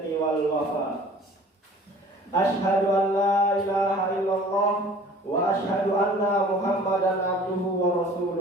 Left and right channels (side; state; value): both; normal; correlation 0.48